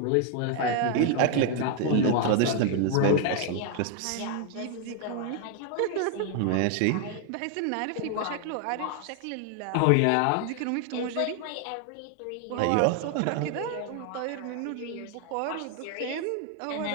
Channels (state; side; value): different; both; correlation 0.00